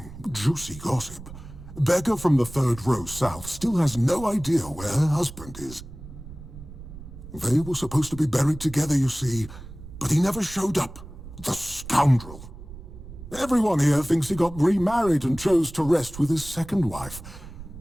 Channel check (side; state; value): right; noise; rumble, 15 dB below the sound